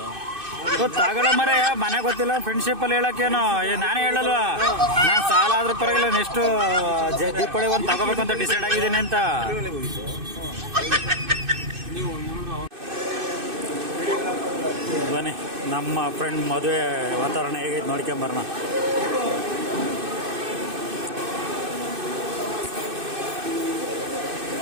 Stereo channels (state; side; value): late; left; 2.6 ms